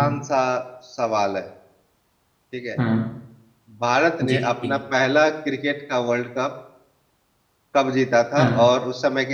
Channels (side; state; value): both; identical; correlation 1.00